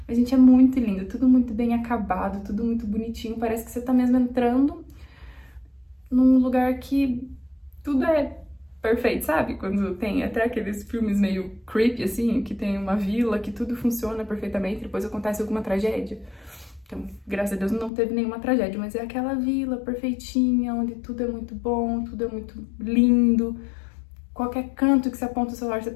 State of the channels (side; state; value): right; drops out; at 17.9 s